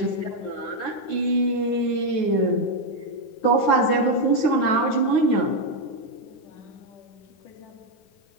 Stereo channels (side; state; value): right; late; 9.4 ms